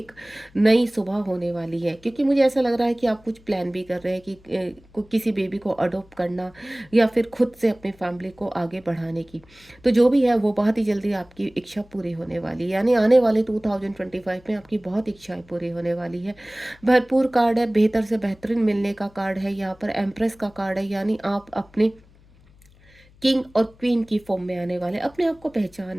नई सुबह होने वाली है। क्योंकि मुझे ऐसा लग रहा है कि आप कुछ प्लान भी कर रहे हैं कि किसी बेबी को अडॉप्ट करना या फिर खुद से अपनी फैमिली को आगे बढ़ाने की। तो जो भी है वो बहुत ही जल्दी आपकी इच्छा पूरी होने वाली है, यानी आने वाले 2025 में आपकी बहुत इच्छाएं पूरी होने वाली है। भरपूर कार्ड है, बेहतर से बेहतरीन मिलने का कार्ड है। यहाँ पर एम्प्रेस का कार्ड है, यानी आप अपने किंग और क्वीन की फॉर्म में आने वाले, अपने आप को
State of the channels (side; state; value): left; noise; hum, 28 dB below the sound